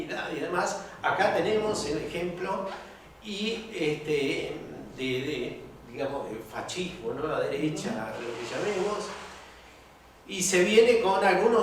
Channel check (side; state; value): both; identical; correlation 1.00